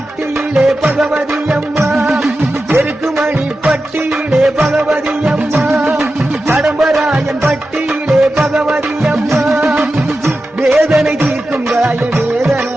பகவதி அம்மா எருக்குமணி பட்டியிலே பகவதி அம்மா கடம்பராயன் பட்டியிலே பகவதி அம்மா வேதனை தீர்க்கும் காய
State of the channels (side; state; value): both; normal; correlation 0.92